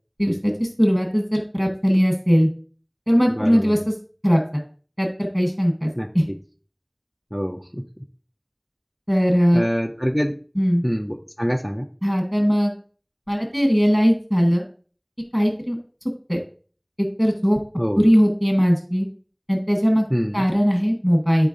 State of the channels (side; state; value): both; identical; correlation 1.00